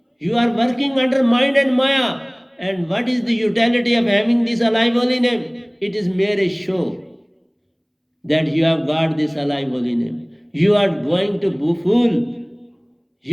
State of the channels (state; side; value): identical; both; correlation 1.00